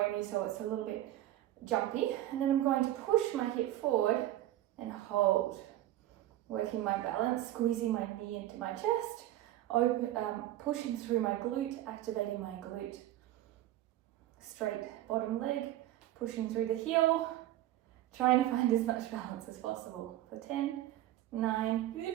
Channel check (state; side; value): quieter; left; 14.2 dB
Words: so it's a little bit jumpy. And then I'm going to push my hip forward and hold. Working my balance, squeezing my knee into my chest, pushing through my glute, activating my glute. Straight bottom leg, pushing through the heel, trying to find as much balance as possible. For 10, 9,